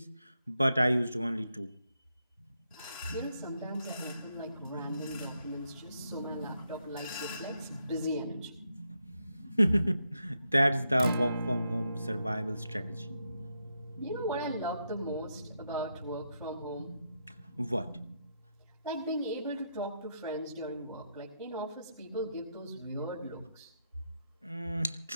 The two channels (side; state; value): both; inverted; correlation -0.82